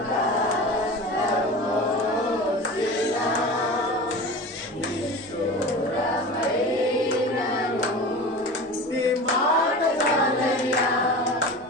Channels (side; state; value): both; normal; correlation 0.33